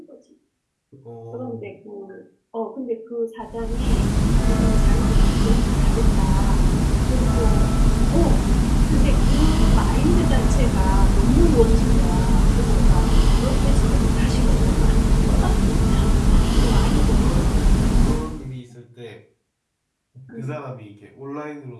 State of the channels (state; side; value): identical; both; correlation 1.00